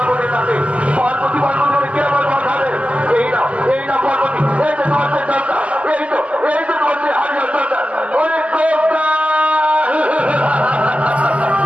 কাছে পার্বতী পার্বতী কে আমার বাঁচাবে? এই না পার্বতী, এই যে তোমার সন্তান, এই যে তোমার হারিয়ে সন্তান। অনেক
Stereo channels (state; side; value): late; left; 0.063 ms